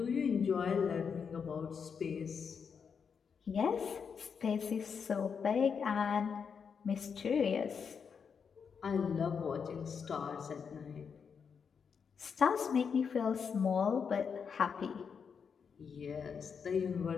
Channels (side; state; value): right; quieter; 6.4 dB